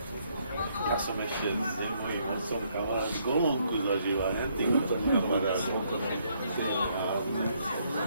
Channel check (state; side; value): inverted; both; correlation -0.71